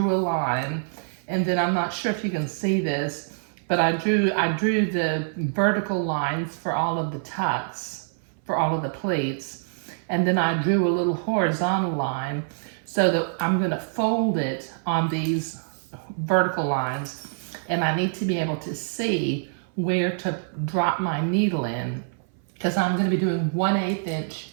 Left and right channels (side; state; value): left; silent; 59 dB below the other